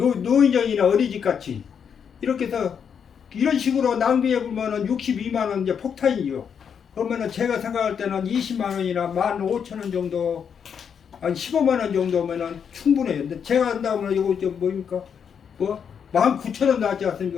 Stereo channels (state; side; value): quieter; right; 7.3 dB